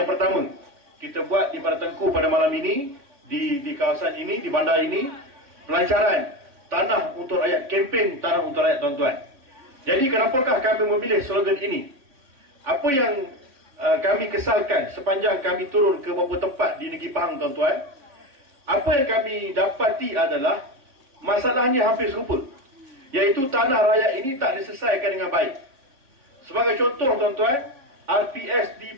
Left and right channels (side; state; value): left; late; 3.6 ms